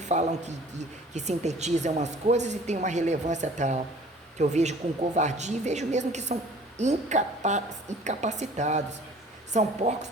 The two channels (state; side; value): normal; both; correlation 0.50